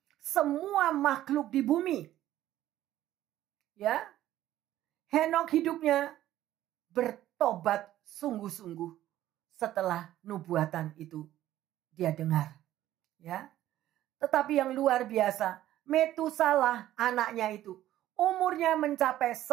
semua makhluk di bumi. Ya, Henokh hidupnya bertobat sungguh-sungguh setelah nubuatan itu dia dengar. Ya. Tetapi yang luar biasa, Metusalah anaknya itu umurnya mencapai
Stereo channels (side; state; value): left; quieter; 13.5 dB